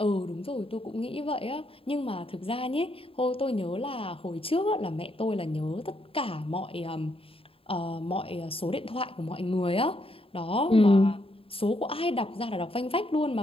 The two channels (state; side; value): late; right; 0.27 ms